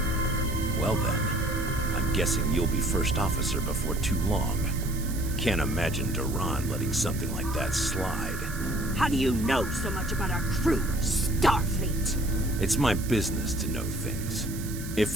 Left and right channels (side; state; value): right; noise; hiss, 13 dB below the sound